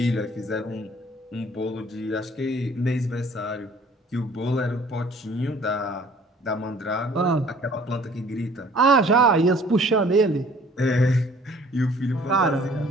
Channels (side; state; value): both; normal; correlation 0.54